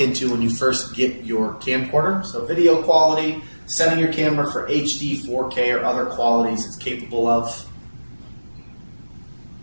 when you first get your camcorder. So video quality, setting your camera for HD, 4K, or other qualities it's capable of.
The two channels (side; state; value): both; inverted; correlation -1.00